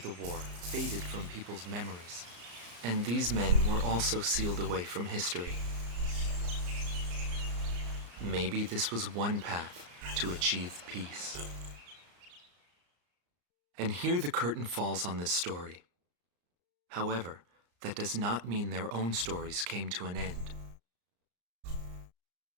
war faded from people's memories, and these men were also sealed away from history. Maybe this was one path to achieve peace. And here the curtain falls on this story. However, that does not mean their own stories came to an end.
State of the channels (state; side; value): late; left; 34 ms